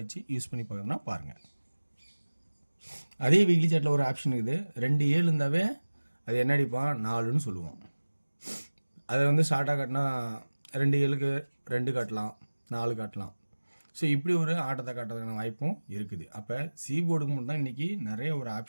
வச்சு யூஸ் பண்ணி பார்க்கணுன்னா பாருங்கள். அதே வீக்லி சாட்டில் ஒரு ஆப்ஷன் இருக்குது. 2 7 இருந்தாவே அது என்ன அடிப்பான் 4ன்னு சொல்லுவோம். அதை வந்து ஷார்ட்டாக காட்டினா 2 7க்கு 2 காட்டலாம், 4 காட்டலாம். ஸோ இப்படி ஒரு ஆட்டத்தை காட்டுறதுக்கான வாய்ப்பும் இருக்குது. அப்போ போர்டுக்கு மட்டும் தான் இன்றைக்கி நிறைய ஒரு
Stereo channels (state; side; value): inverted; both; correlation -1.00